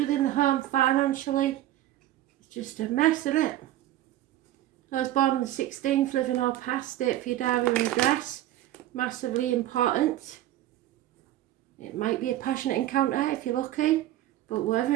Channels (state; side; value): quieter; left; 13.9 dB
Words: the home financially. It's just a mess, isn't it? I was born on the 16th, living or past, date for your diary and address. Massively important. It might be a passionate encounter if you're lucky, but whatever